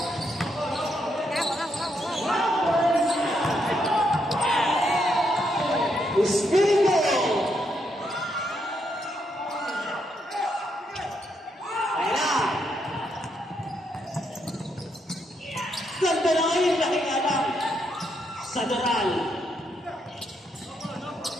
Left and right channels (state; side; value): normal; both; correlation 0.78